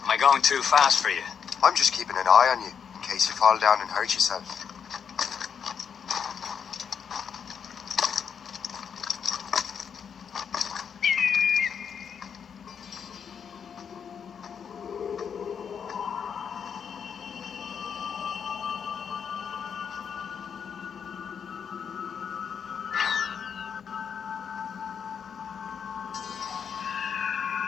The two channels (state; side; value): quieter; right; 7.2 dB